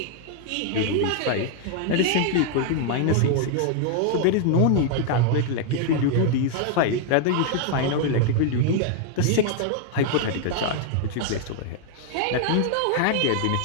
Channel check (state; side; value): different; both; correlation 0.00